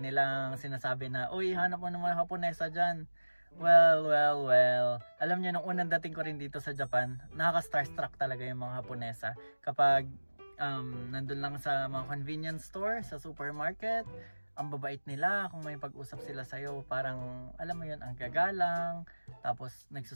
nilang sinasabi na, uy, hanap mo naman Haponesa dyan. Well. Alam niyo, nung unang dating ko rin dito sa Japan, nakaka-starstruck talaga yung mga Haponesa. Kapag nandun lang sa mga convenience store, sa supermarket, ang babait nila. Kung may pag-usap sila sa'yo, parang, alam mo yun, ang gagalang. Tapos,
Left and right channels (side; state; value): both; inverted; correlation -1.00